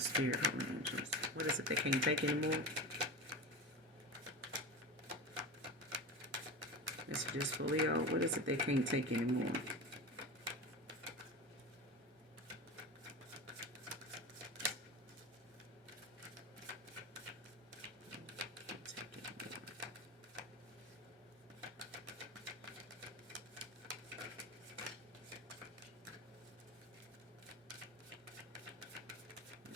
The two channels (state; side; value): normal; both; correlation 0.26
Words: Holy Angels. What is it they can't take anymore? Messages for Leo. What is it they can't take anymore?